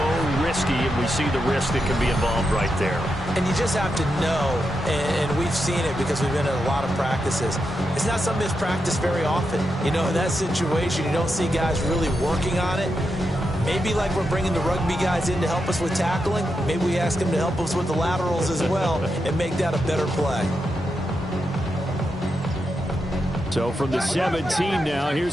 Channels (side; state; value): both; normal; correlation 0.86